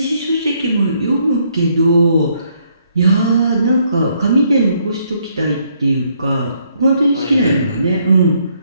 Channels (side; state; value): both; inverted; correlation -0.71